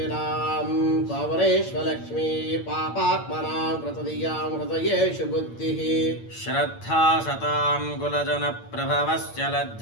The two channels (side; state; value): right; late; 8.8 ms